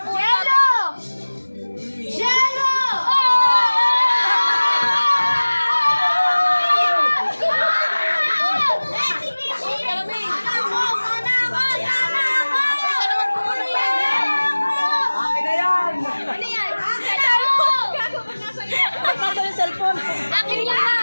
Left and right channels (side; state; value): both; inverted; correlation -1.00